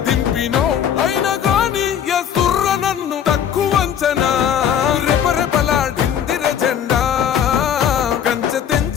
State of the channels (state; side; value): quieter; right; 9.0 dB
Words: దింపినో అయినా గాని ఎసుర్ర నన్ను తక్కువంచనా రెపరెపలాడిందిర జెండా కంచె